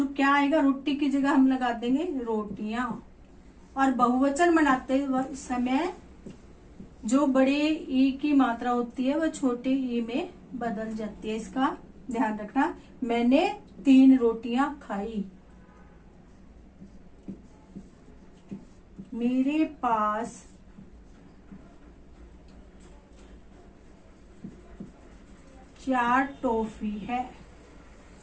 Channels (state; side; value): identical; both; correlation 1.00